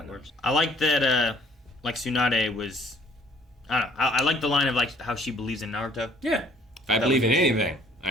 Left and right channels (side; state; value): both; normal; correlation 0.58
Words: works. I like that, like, Tsunade was, I don't know. I like the line of, like, how she believes in Naruto. Yeah. If I believe in anything,